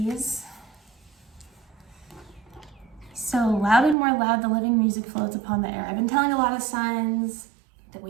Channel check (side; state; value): left; drops out; at 4.0 s